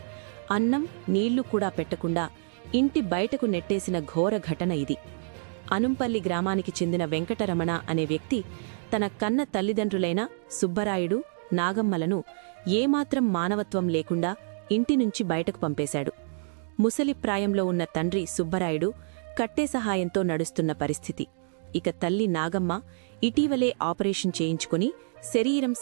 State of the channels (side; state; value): left; silent; digital silence